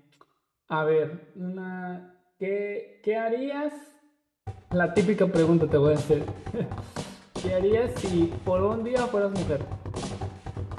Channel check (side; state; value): both; identical; correlation 1.00